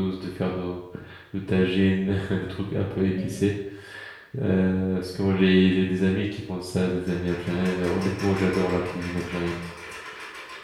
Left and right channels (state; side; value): identical; both; correlation 1.00